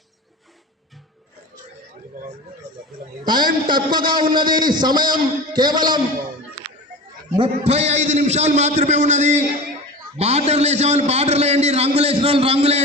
టైం తక్కువగా ఉన్నది, సమయం కేవలం 35 నిమిషాలు మాత్రమే ఉన్నది. బార్డర్లు వేసే వాళ్ళు బార్డర్లు వేయండి, రంగులు వేసిన వాళ్ళు రంగులు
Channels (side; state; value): both; normal; correlation 0.31